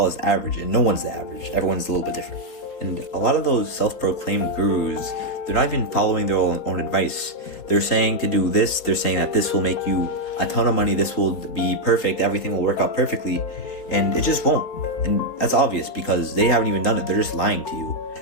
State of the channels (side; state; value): right; late; 3.9 ms